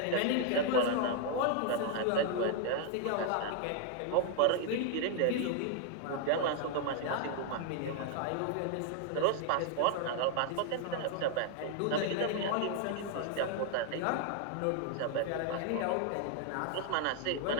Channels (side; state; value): both; different; correlation 0.00